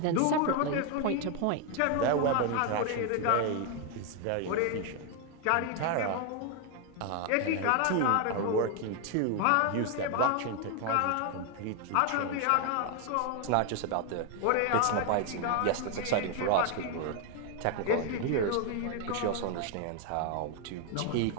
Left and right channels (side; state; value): both; different; correlation 0.00